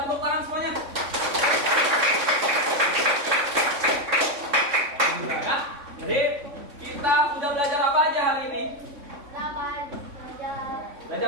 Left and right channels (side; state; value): left; late; 3.6 ms